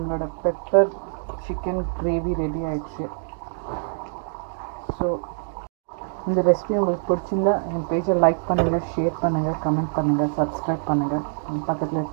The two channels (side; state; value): left; silent; digital silence